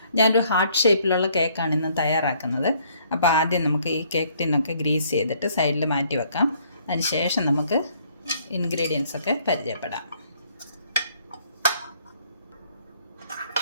ഞാനൊരു ഹാർട്ട് ഷേപ്പിലുള്ള കേക്കാണ് ഇന്ന് തയ്യാറാക്കുന്നത്. അപ്പോൾ ആദ്യം നമുക്ക് ഈ കേക്ക് ടിന്നൊക്കെ ഗ്രീസ് ചെയ്തിട്ട് സൈഡിൽ മാറ്റി വെക്കാം. അതിനുശേഷം നമുക്ക് ഇൻഗ്രീഡിയൻസ് ഒക്കെ പരിചയപ്പെടാം.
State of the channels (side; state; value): both; inverted; correlation -0.64